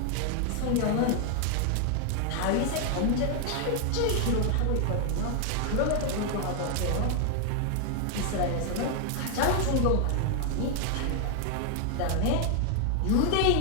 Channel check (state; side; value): different; both; correlation 0.00